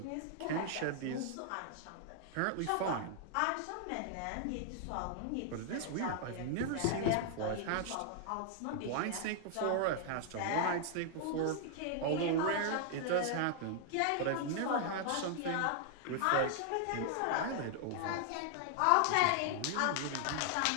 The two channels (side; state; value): both; different; correlation 0.00